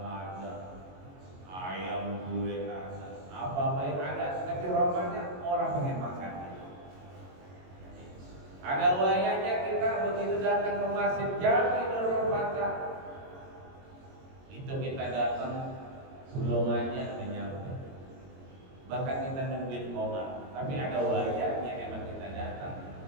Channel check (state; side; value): late; left; 22 ms